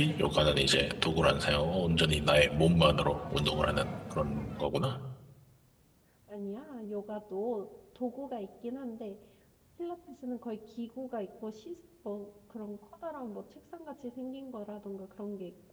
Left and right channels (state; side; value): identical; both; correlation 1.00